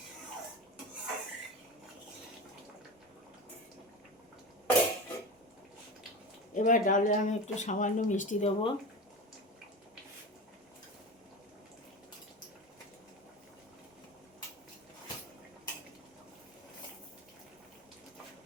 এবার ডালে আমি একটু সামান্য মিষ্টি দেবো।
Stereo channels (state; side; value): normal; both; correlation 0.27